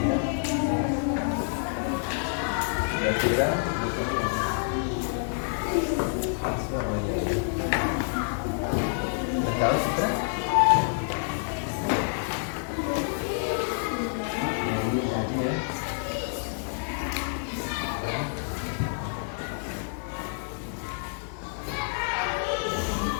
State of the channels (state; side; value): silent; right; digital silence